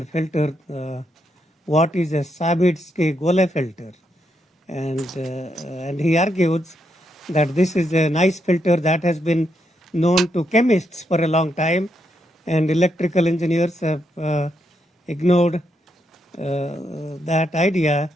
filter, what is a Sabitzky-Golay filter. And he argues that this is a nice filter that has been known to chemists for a long time, and electrical engineers have ignored that idea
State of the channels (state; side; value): normal; both; correlation 0.80